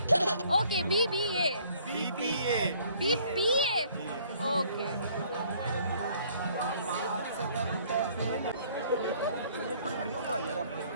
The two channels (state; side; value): inverted; both; correlation -0.59